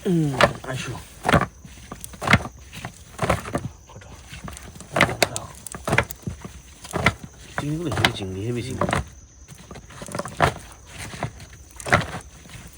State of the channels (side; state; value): both; identical; correlation 1.00